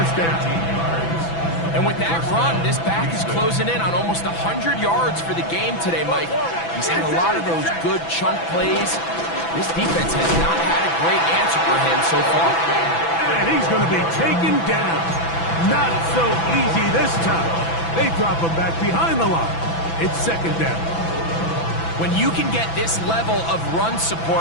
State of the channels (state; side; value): late; right; 6.0 ms